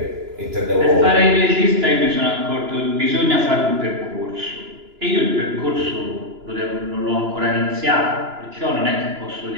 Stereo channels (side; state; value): left; late; 2.9 ms